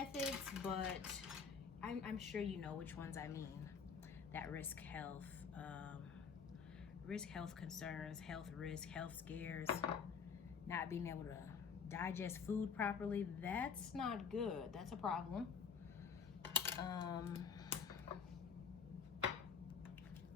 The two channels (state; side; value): quieter; right; 6.4 dB